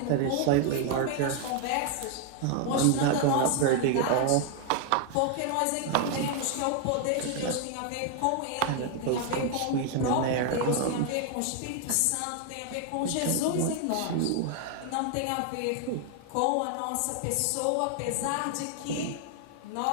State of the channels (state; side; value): different; both; correlation 0.00